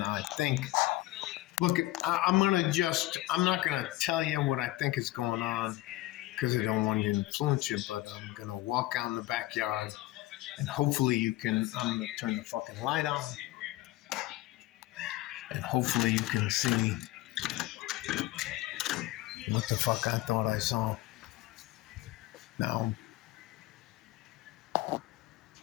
I think, look, I'm not going to tell you what I think is going on because I don't want to influence you, but I'm going to walk out in the backyard, and hopefully I'm going to turn the fucking light on, and hopefully you can see what the fuck I thought I saw. Now,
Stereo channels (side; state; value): right; quieter; 17.4 dB